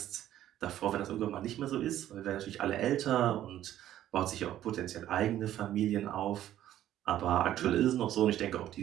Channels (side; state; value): left; quieter; 12.4 dB